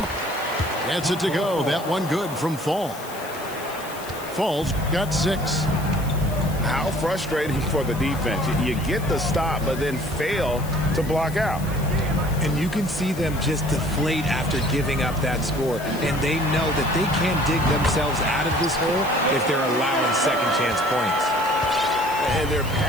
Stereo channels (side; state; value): left; noise; hiss, 16 dB below the sound